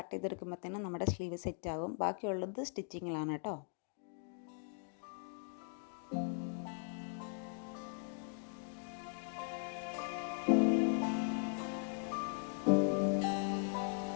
ചെയ്തെടുക്കുമ്പോഴത്തേനും നമ്മുടെ സ്ലീവ് സെറ്റ് ആകും. ബാക്കിയുള്ളത് സ്റ്റിച്ചിങ്ങിലാണ് കേട്ടോ.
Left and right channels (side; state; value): right; silent; 51 dB below the other